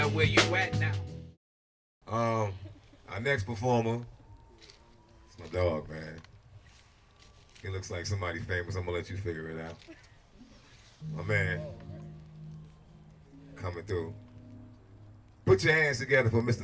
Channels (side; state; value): both; identical; correlation 1.00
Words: where you at now? Our next performer, it's my dog, man. He looks like somebody famous. I'm gonna let you figure it out. My man, coming through. Put your hands together for